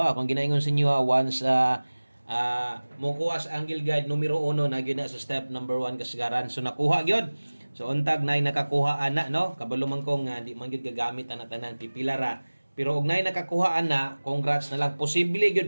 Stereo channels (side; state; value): both; inverted; correlation -1.00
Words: Akong ginaingon sa inyo once mukuha sa Angle Guide numero 1 na gyud na sa step number 1 kasagaran. So nakuha gyud. So untag nay nakakuha ana no. Kabalo man kong di man gyud gagamit ana tanan pipila ra. Pero og nay nakakuha ana, congrats na lang. Posible